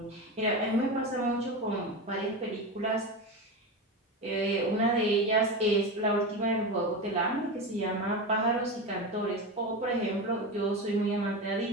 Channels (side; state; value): both; normal; correlation 0.21